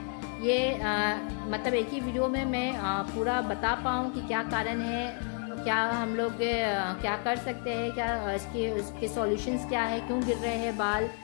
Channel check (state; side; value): quieter; right; 37.3 dB